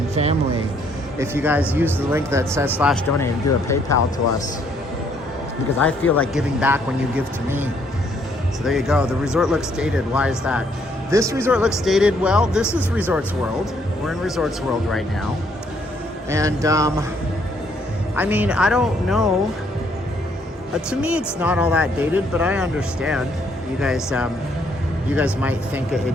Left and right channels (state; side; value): normal; both; correlation 0.68